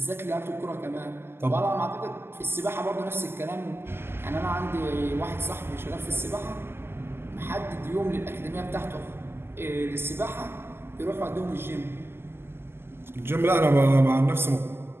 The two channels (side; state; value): left; late; 0.11 ms